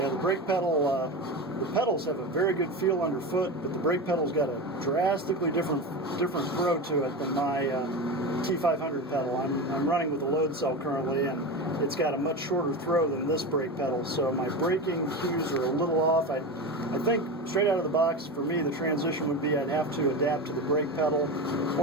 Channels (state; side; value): normal; both; correlation 0.23